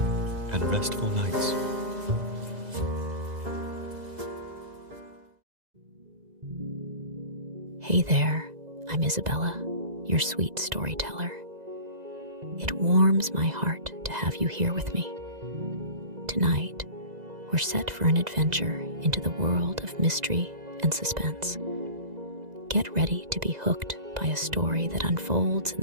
and restful nights. Hey there, I'm Isabella, your sweet storyteller. It warms my heart to have you here with me. Tonight, we're set for an adventure into the world of mystery and suspense. Get ready to be hooked by a story that unfolds in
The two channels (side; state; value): left; late; 2.0 ms